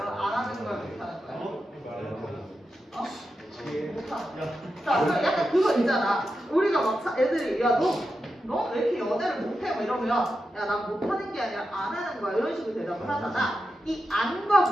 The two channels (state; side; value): normal; both; correlation 0.89